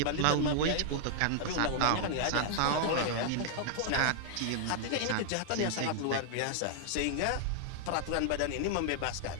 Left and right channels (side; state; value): both; different; correlation 0.00